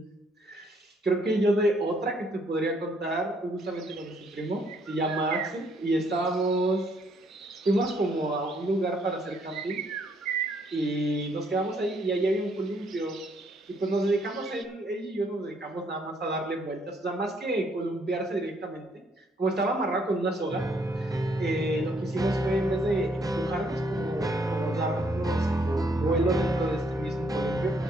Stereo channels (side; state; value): both; normal; correlation 0.69